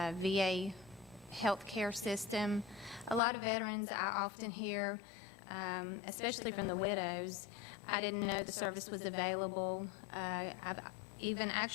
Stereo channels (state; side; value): drops out; right; at 3.2 s